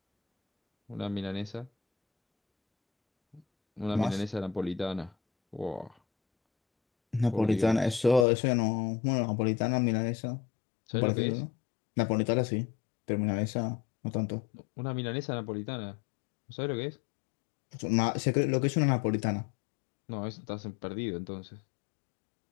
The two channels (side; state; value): right; drops out; at 8.2 s